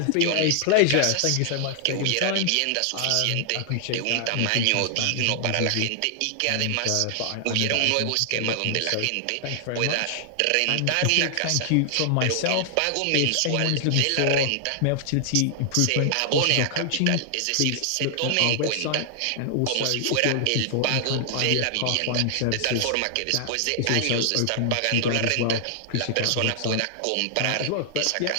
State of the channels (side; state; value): both; different; correlation 0.00